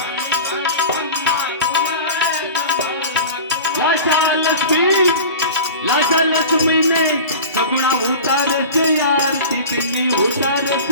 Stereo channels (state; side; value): inverted; both; correlation -0.35